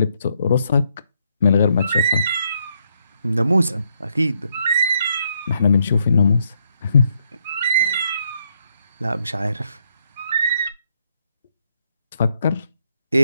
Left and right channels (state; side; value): inverted; both; correlation -0.75